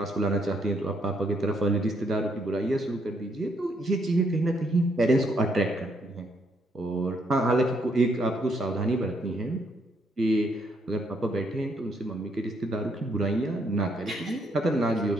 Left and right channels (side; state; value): both; normal; correlation 0.73